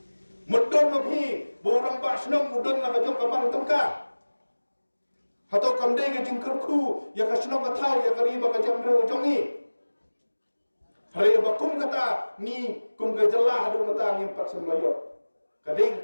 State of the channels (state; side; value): inverted; both; correlation -1.00